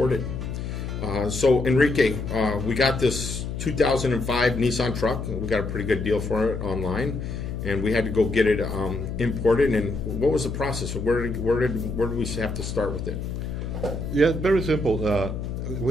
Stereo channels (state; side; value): noise; left; hum, 5 dB below the sound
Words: So Enrique, we got this 2005 Nissan truck. We got a pretty good deal for it online, and we had to go get it imported. And what was the process? Where did we have to start with it? Yeah, very simple.